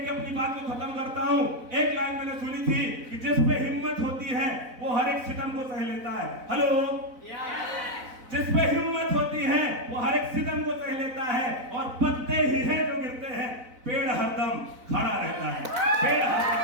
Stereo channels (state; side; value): late; left; 4.0 ms